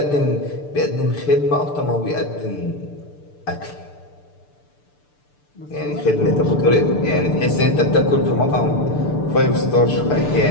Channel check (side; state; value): right; late; 6.8 ms